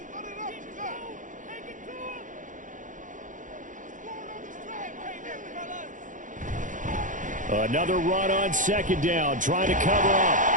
Another run on 2nd down, trying to cover up.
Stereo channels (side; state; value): left; late; 0.37 ms